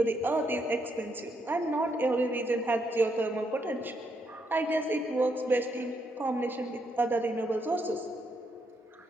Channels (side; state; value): both; normal; correlation 0.77